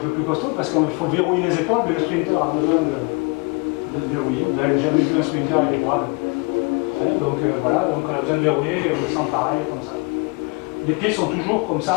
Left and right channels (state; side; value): quieter; right; 30.9 dB